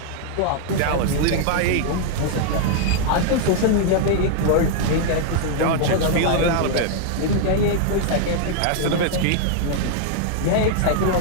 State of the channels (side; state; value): both; different; correlation 0.00